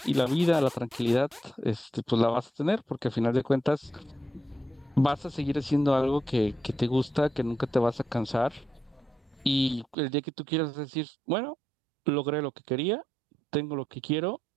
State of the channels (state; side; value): drops out; left; at 10.0 s